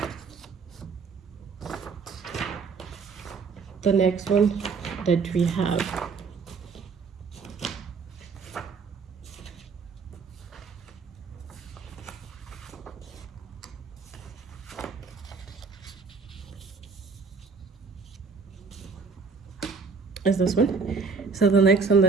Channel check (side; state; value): left; quieter; 4.9 dB